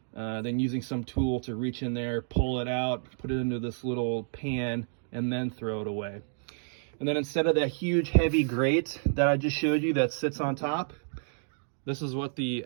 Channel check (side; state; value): left; silent; digital silence